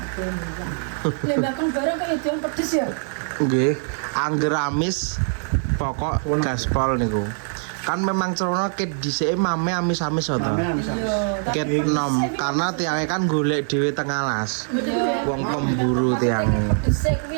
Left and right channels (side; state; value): left; silent; 63 dB below the other